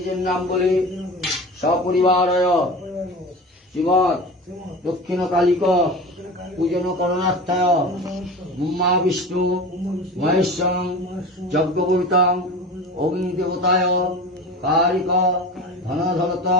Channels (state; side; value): normal; both; correlation 0.32